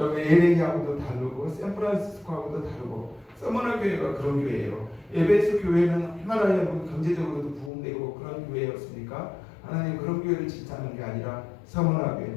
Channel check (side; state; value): right; drops out; at 7.7 s